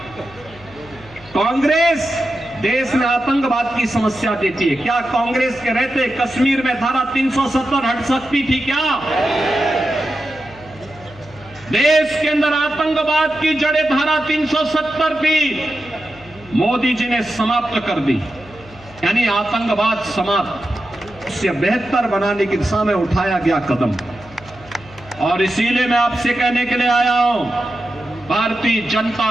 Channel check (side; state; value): left; noise; hum, 22 dB below the sound